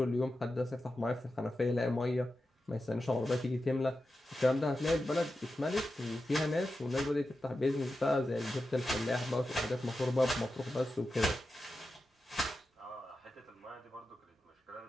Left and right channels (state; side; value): normal; both; correlation 0.91